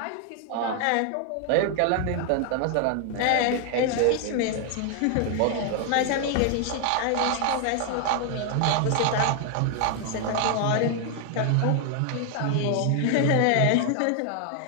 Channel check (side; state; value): both; different; correlation 0.00